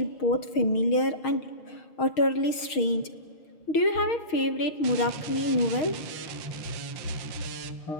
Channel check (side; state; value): right; late; 6.4 ms